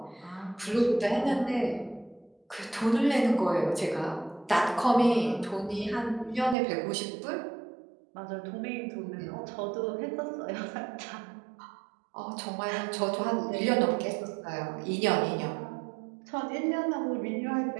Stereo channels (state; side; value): drops out; left; at 6.6 s